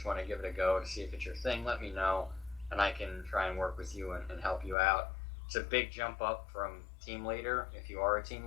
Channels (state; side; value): drops out; right; at 4.8 s